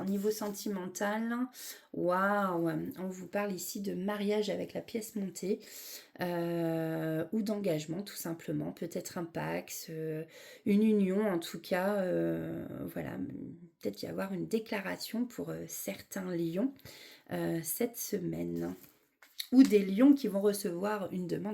niveau sentimental, waouh, on vous parle ici de mariage avec la pièce montée ou d'engagement tout simplement, peut-être un pax, une union en tout cas, voilà, peut-être y avoir une déclaration pour certains lions cette semaine. Ou des lions qui vont recevoir une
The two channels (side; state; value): both; identical; correlation 1.00